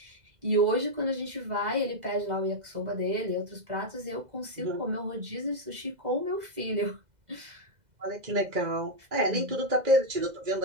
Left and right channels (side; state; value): left; late; 2.0 ms